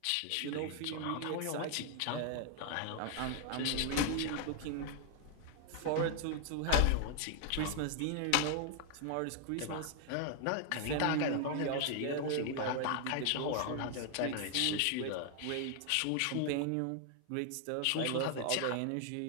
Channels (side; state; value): both; different; correlation 0.00